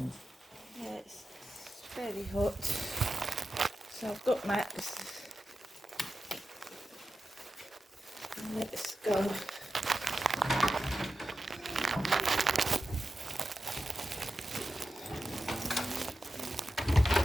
Yeah, it's fairly hot. So I've got Max. Let's go.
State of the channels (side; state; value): both; normal; correlation 0.92